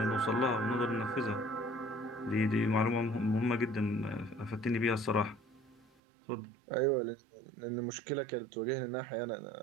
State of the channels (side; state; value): left; drops out; at 5.9 s